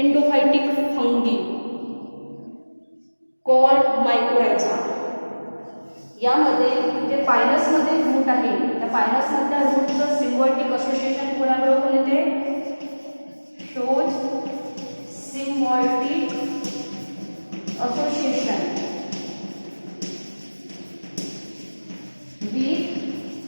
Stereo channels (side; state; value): both; inverted; correlation -1.00